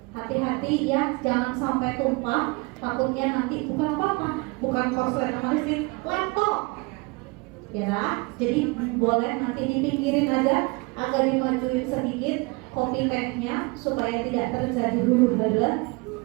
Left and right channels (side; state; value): left; quieter; 27.1 dB